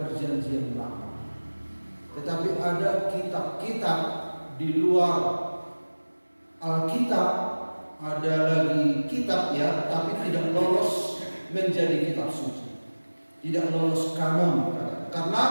perjanjian lama, tetapi ada kitab-kitab di luar Alkitab, ada lagi kitab ya, tapi tidak lolos menjadi kitab suci, tidak lolos kanon. Karena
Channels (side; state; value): both; inverted; correlation -1.00